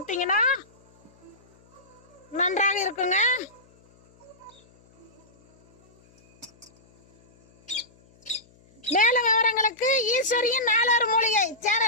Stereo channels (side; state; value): left; noise; hum, 30 dB below the sound